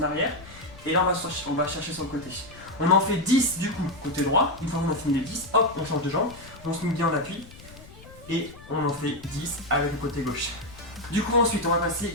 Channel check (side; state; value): left; noise; rumble, 19 dB below the sound